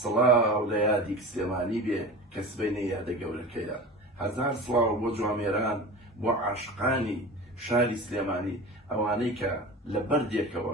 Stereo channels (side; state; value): both; normal; correlation 0.33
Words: لە یادی سلێمانی بێ کە سبەینە یادە گەورەکەیە. 1000 سڵاو بۆ جوامێران بۆ عاشقانی شاری سلێمانی ئەوانەی کە لە بەردێکەوە